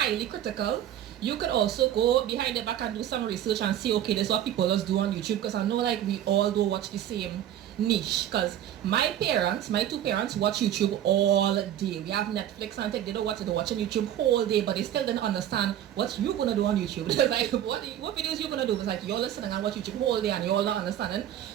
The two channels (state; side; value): quieter; left; 11.3 dB